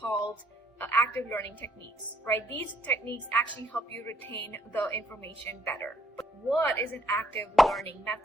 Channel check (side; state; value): both; normal; correlation 0.69